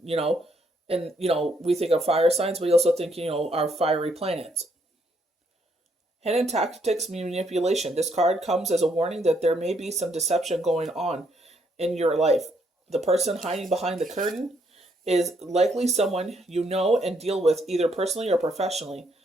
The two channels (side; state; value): both; normal; correlation 0.72